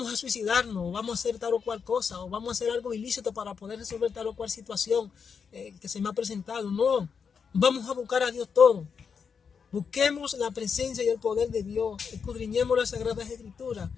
a suicidarnos, vamos a hacer tal o cual cosa, o vamos a hacer algo ilícito para poder resolver tal o cual situación que se me ha presentado. No, vamos a buscar a Dios todo. Busquemos la presencia y el poder de Dios, escudriñemos las Sagradas Escrituras.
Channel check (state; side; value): quieter; right; 6.2 dB